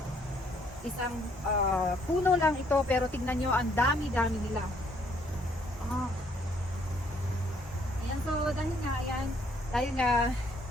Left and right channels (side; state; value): both; normal; correlation 0.66